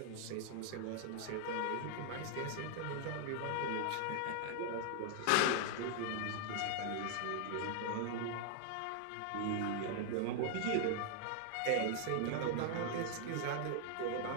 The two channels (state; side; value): different; both; correlation 0.00